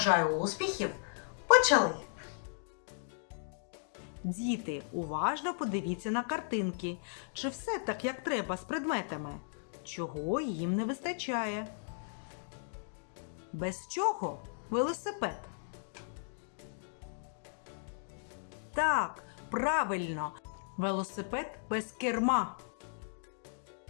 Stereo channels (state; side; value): silent; right; digital silence